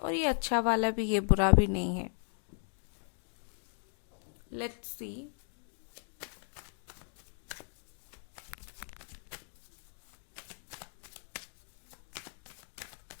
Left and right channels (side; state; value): right; silent; 53 dB below the other